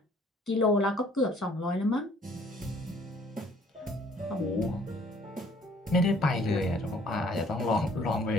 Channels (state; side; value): normal; both; correlation 0.59